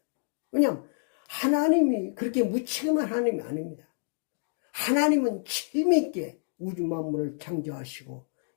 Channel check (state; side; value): silent; right; digital silence